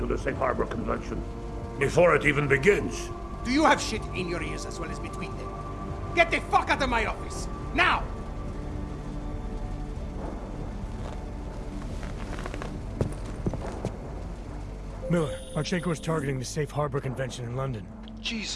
the Safe Harbor Convention before it even begins. Do you have shit in your ears as well as between them? Get the fuck out of my office! Now! Miller, Marchenko is targeting the Safe Harbor Convention in London.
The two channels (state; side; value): identical; both; correlation 1.00